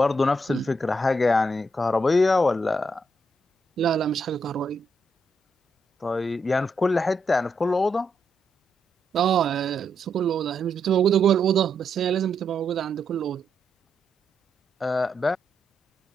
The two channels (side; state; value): both; normal; correlation 0.80